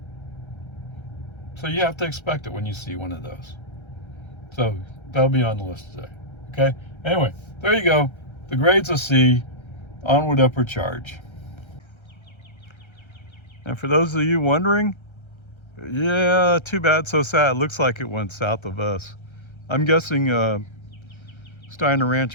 So you have to expect it when you see one of those. So that'll be on the list today. Okay? Anyway, there you go. The grade's a C. Onward, upward charge. And for those of you wondering, yeah, too bad, so sad. It looks like it went south of us. I'm guessing Steiner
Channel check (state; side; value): late; right; 1.3 ms